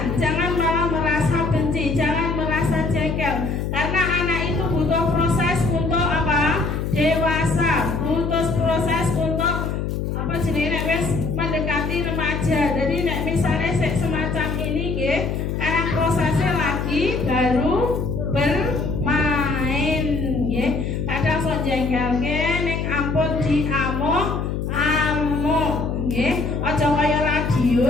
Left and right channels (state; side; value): noise; left; hum, 2 dB below the sound